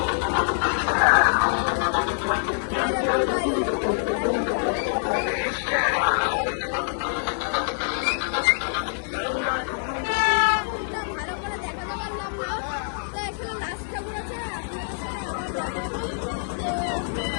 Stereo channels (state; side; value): silent; right; digital silence